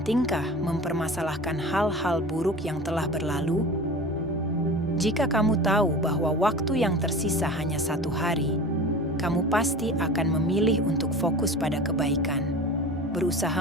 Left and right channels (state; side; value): normal; both; correlation 0.35